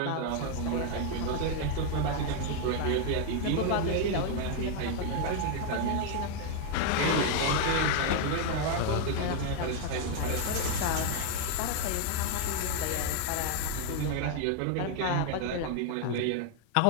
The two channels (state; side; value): different; both; correlation 0.00